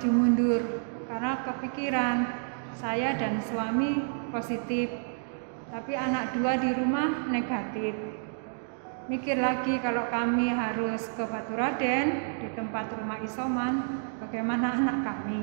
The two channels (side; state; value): left; silent; digital silence